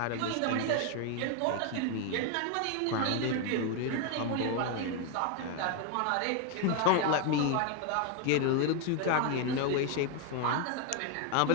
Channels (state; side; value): different; both; correlation 0.01